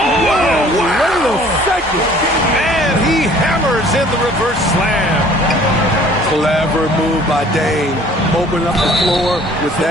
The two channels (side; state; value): both; normal; correlation 0.53